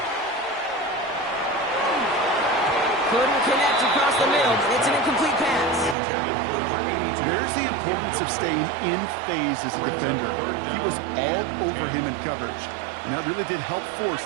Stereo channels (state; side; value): drops out; left; at 6.0 s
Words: Couldn't connect across the middle. It's an incomplete pass. There's the importance of staying in phase as a defender. He was all over him in coverage, and that really did help force